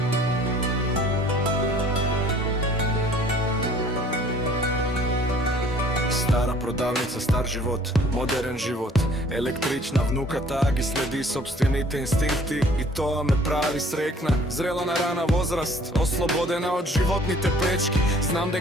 продавница, стар живот, модерен живот. Електрична внуката ги следи собствените инстинкти и тоа ме прави срекна. Зрела на рана возраст, ослободена од животните пречки. Знам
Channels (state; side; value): normal; both; correlation 0.54